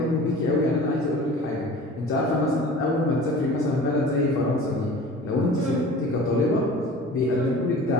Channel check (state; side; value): normal; both; correlation 0.41